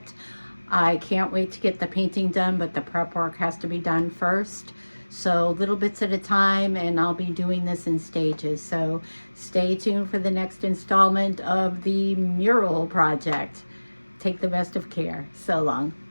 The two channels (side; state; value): both; inverted; correlation -1.00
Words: I can't wait to get the painting done, but the prep work has to be done first. So little bits at a time, and I'll be doing this in stages. So stay tuned for the next installment of the mural project. Take the best of care. So long.